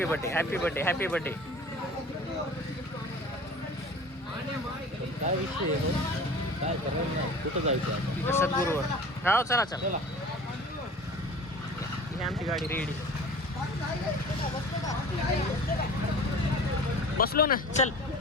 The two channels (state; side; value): normal; both; correlation 0.41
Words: birthday. काय विषय काय करणार? कुठं जायचं? सद्गुरूवर. हो चला. ही आमची गाडी रेडी. बसलो ना. चल